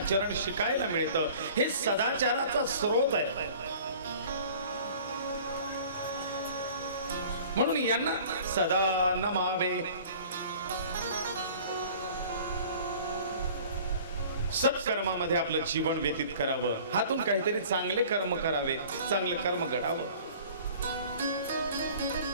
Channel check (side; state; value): both; inverted; correlation -0.47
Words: शिकायला मिळतं. हे सदाचाराचा स्रोत आहे. म्हणून यांना सदा नमावे. सत्कर्मामध्ये आपलं जीवन व्यतीत करावं. हातून काहीतरी चांगले कर्म करावे, चांगले कर्म घडावं.